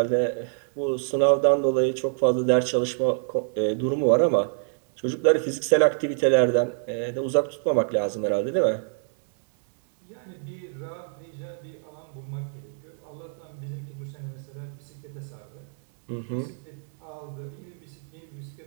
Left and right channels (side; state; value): left; silent; 61 dB below the other